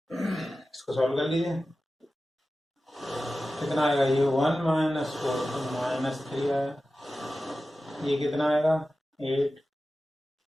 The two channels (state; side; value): normal; both; correlation 0.94